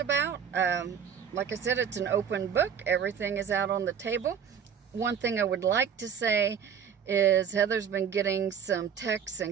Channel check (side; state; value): left; quieter; 7.7 dB